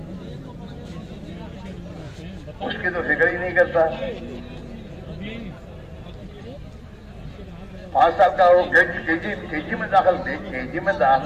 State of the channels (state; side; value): identical; both; correlation 1.00